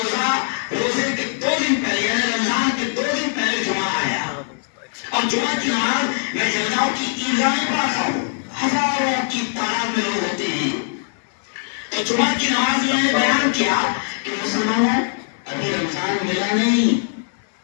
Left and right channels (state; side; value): silent; right; 65 dB below the other